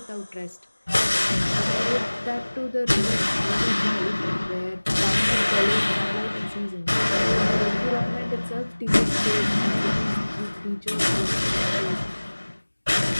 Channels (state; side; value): inverted; both; correlation -1.00